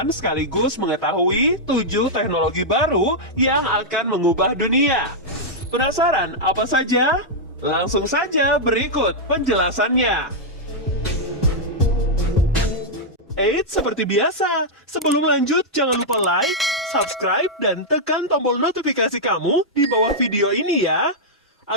sekaligus mengetahui 7 teknologi baru yang akan mengubah dunia. Penasaran apa saja? Langsung saja berikut penjelasannya. Eits, seperti biasa, sebelum lanjut jangan lupa like, subscribe, dan tekan tombol notifikasi kamu di bawah video ini ya,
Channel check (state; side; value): normal; both; correlation -0.06